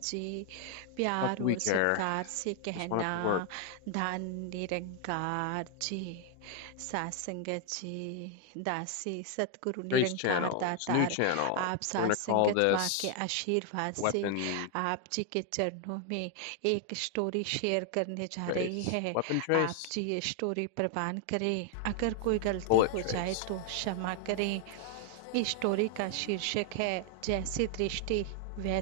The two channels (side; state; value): both; different; correlation 0.00